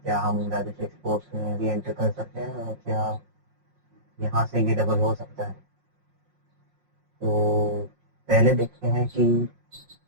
क्या हम राजस्व एक्सपोर्ट्स में भी एंटर कर सकते हैं और क्या यहाँ से ये डबल हो सकता है। तो पहले देखते हैं कि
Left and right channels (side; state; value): left; late; 5.6 ms